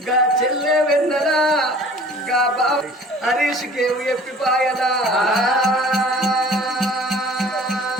గా చెల్లె వెన్నెలా, గా బావ హరీష్కేమో ఎప్పిపాయలా.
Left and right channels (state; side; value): normal; both; correlation 0.47